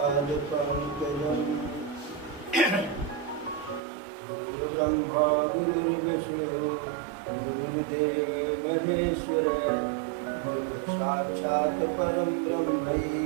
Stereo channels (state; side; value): drops out; left; at 3.8 s